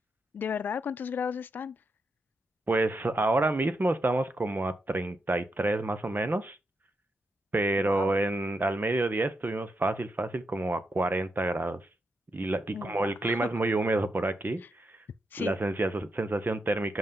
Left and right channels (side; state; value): both; normal; correlation 0.83